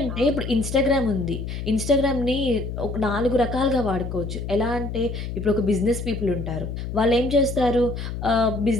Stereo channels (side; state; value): left; noise; hum, 6 dB below the sound